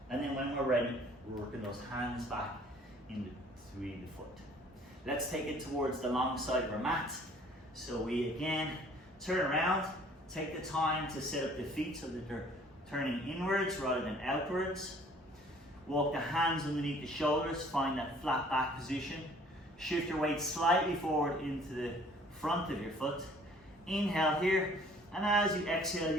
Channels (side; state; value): both; normal; correlation 0.55